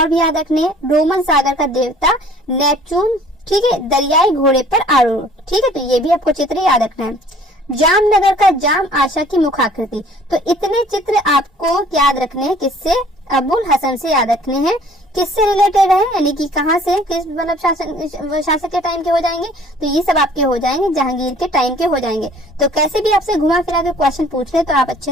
भी याद रखने हैं। रोमन सागर का देवता नेपच्यून, ठीक है, दरियाई घोड़े पर आरूढ़। ठीक है, तो ये भी आपको चित्र याद रखना है। जामनगर का जाम आशा की मुखाकृति, तो इतने चित्र आपको याद रखने हैं, किससे? अबुल हसन से याद रखने हैं। किससे रिलेटेड है, यानी कि कहाँ से, किस मतलब शासक के टाइम के हो जाएंगे? तो ये सब आपके हो जाएंगे जहांगीर के टाइम के हो जाएंगे। तो कैसे भी आपसे घुमा फिरा के क्वेश्चन पूछ ले तो आप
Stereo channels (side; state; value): both; normal; correlation 0.54